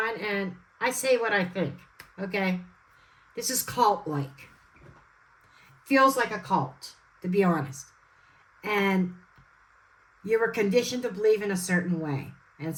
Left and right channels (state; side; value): identical; both; correlation 1.00